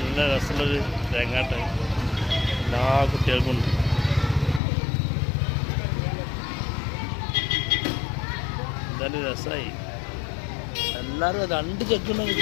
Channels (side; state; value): right; drops out; at 4.6 s